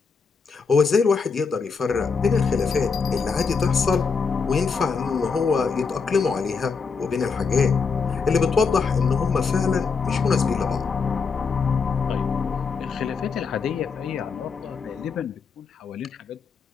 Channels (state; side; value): quieter; right; 5.2 dB